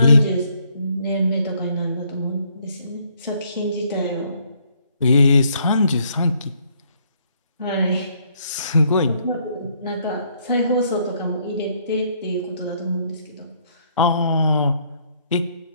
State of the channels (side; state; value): both; inverted; correlation -0.68